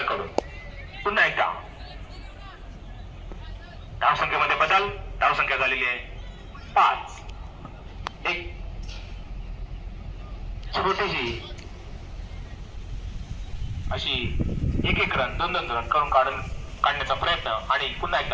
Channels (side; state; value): both; identical; correlation 1.00